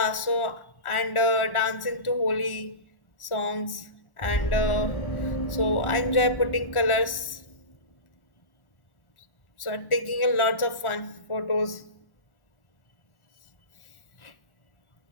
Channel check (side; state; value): right; late; 1.4 ms